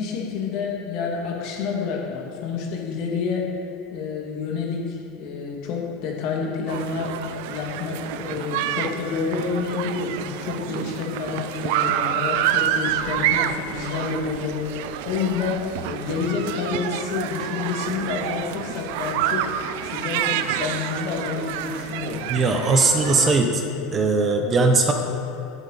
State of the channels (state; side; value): normal; both; correlation 0.25